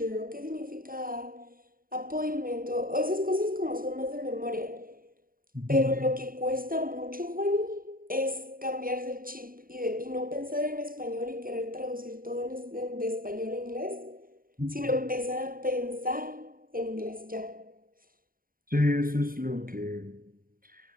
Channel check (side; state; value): left; late; 0.41 ms